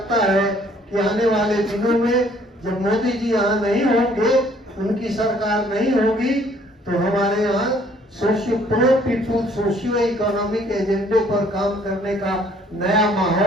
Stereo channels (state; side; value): normal; both; correlation 0.60